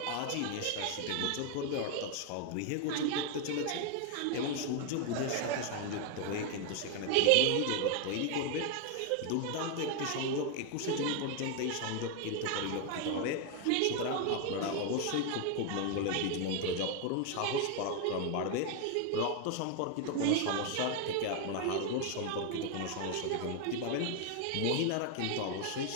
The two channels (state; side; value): different; both; correlation 0.01